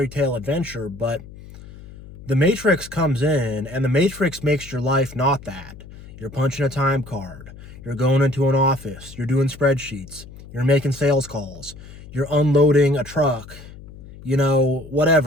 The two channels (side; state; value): left; noise; hum, 17 dB below the sound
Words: tale adventure, but the Matrix comes in, and the Matrix makes your life not that. You're punching a time card. You're going into an office. You're doing spreadsheets. You're making sales calls. You're unloading a truck.